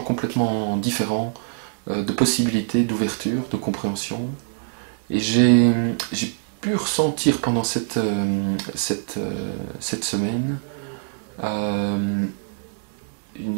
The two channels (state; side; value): silent; left; digital silence